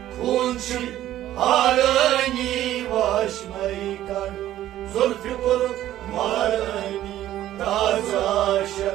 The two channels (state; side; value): quieter; left; 13.2 dB